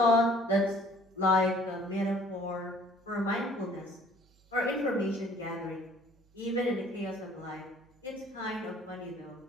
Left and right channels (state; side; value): normal; both; correlation 0.55